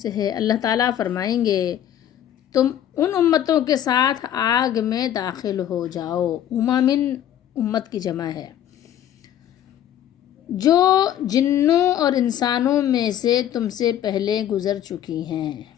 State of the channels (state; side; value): quieter; right; 10.9 dB